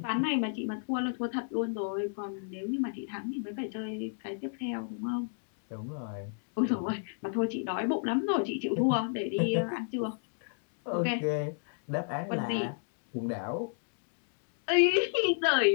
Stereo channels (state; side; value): silent; right; digital silence